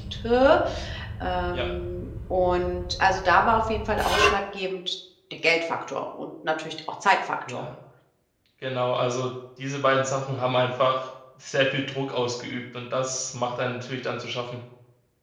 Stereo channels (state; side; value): identical; both; correlation 1.00